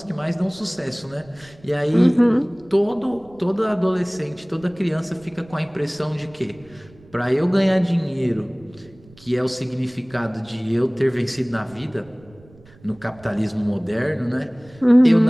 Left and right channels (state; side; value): noise; right; rumble, 25 dB below the sound